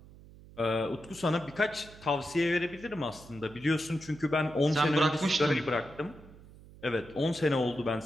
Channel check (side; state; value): right; noise; hum, 20 dB below the sound